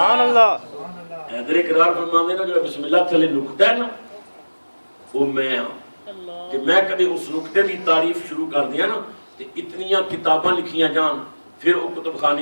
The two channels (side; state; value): both; inverted; correlation -1.00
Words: اللہ حیدر اقرار فرماندے نا جو بسم اللہ تھلے نقطہ ہے نا وہ میں ہوں کہ میں کبھی اس نقطے دی تعریف شروع کر دیا نا کہ اتنیاں کتاباں لکھیاں جان پھر وہ کتب